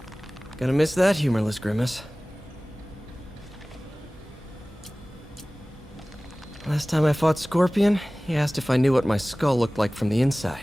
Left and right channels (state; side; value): normal; both; correlation 0.98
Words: Gonna miss that humorless grimace. Last time I fought Scorpion, he asked if I knew what my skull looked like from the